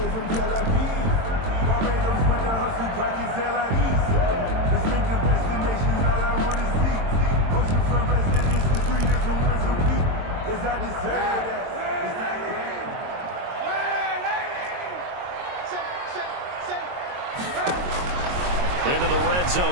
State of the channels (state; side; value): late; left; 22 ms